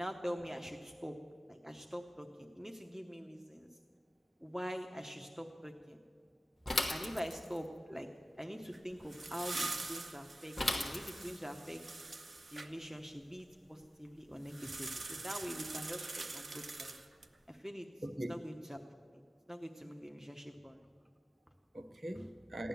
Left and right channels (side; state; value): both; normal; correlation 0.95